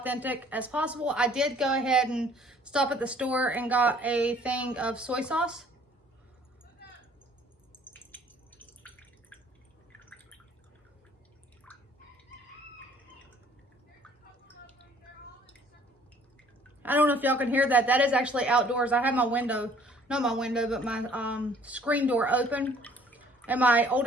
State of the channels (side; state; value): both; normal; correlation 0.57